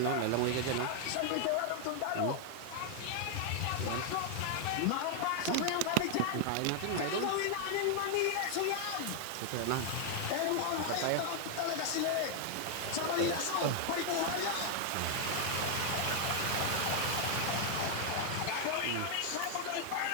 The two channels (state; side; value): different; both; correlation 0.00